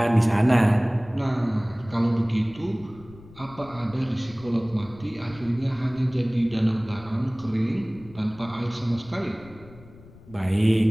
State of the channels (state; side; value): noise; left; rumble, 21 dB below the sound